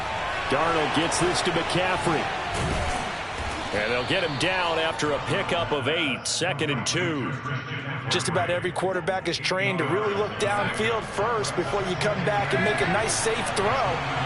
Darnold gets this to McCaffrey. And they'll get him down after a pickup of 8, 2nd and 2. Just about every quarterback is trained to really look downfield first before you come back and make a nice, safe throw.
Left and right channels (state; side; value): identical; both; correlation 1.00